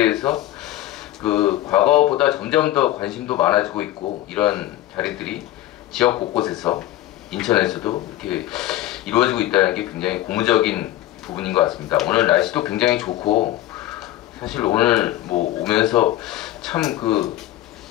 과거보다 점점 더 관심도 많아지고 있고, 이런 자리들이 지역 곳곳에서 인천에서도 이렇게 이루어지고 있다는 게 굉장히 고무적인 부분인 것 같습니다. 오늘 날씨도 굉장히 좋고, 사실 오늘 오면서 참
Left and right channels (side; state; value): right; quieter; 14.5 dB